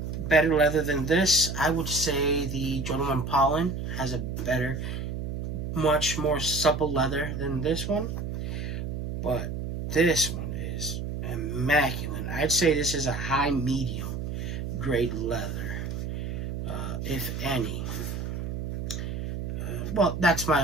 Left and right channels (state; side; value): noise; right; hum, 4 dB below the sound